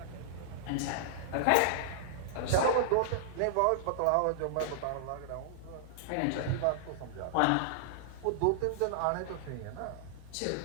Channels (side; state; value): both; different; correlation -0.01